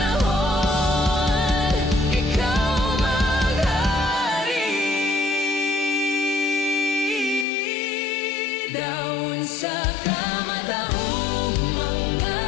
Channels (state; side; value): drops out; right; at 7.5 s